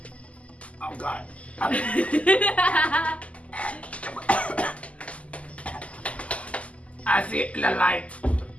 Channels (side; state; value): right; late; 0.065 ms